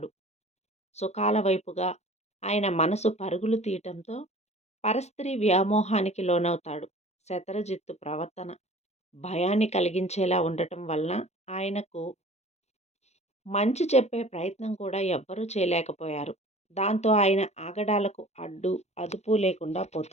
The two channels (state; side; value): late; right; 0.32 ms